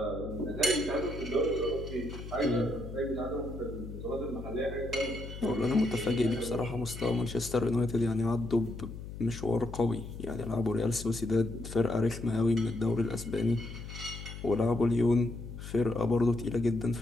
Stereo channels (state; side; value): noise; left; hum, 10 dB below the sound